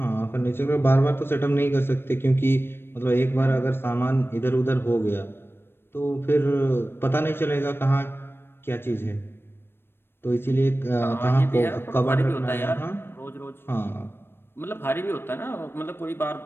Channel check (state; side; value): late; right; 0.11 ms